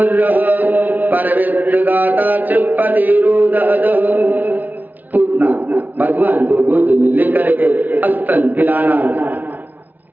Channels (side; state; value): left; late; 0.080 ms